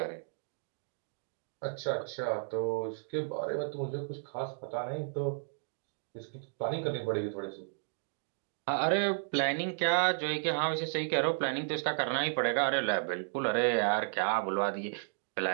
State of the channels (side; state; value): left; silent; digital silence